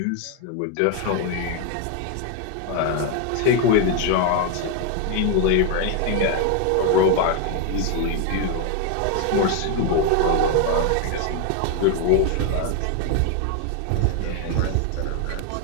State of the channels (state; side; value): different; both; correlation 0.01